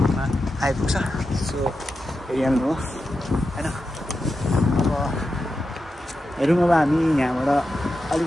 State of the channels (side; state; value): both; normal; correlation 0.90